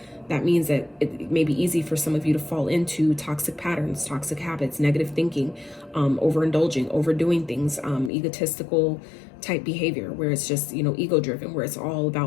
that means that it may be easy for some of you to fall into toxic patterns, toxic habits, negative thinking, overindulging, overdoing things, egotistical type behavior, where it's just, you know, ego driven, where it's all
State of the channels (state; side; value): drops out; right; at 8.1 s